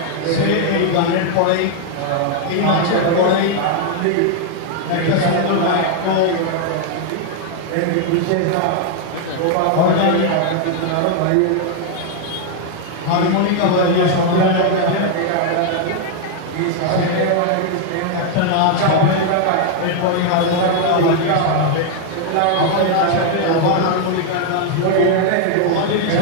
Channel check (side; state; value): both; different; correlation 0.00